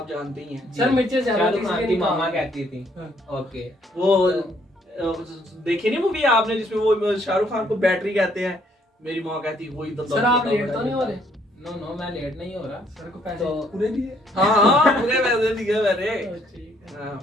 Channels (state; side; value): normal; both; correlation 0.67